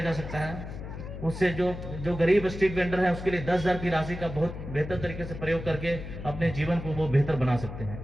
सकता है। उससे जो गरीब स्ट्रीट वेंडर है उसके लिए 10,000 की राशि का बहुत बेहतर तरीके से प्रयोग करके अपने जीवन को वो बेहतर बना सकते हैं।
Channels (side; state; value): left; noise; hum, 9 dB below the sound